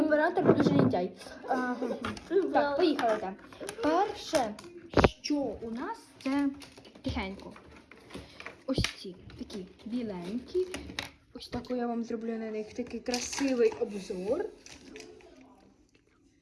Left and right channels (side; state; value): both; identical; correlation 1.00